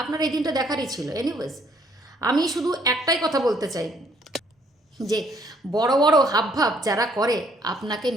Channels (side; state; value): both; normal; correlation 0.66